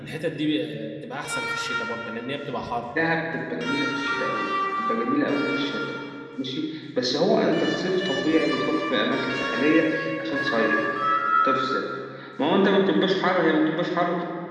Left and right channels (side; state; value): both; identical; correlation 1.00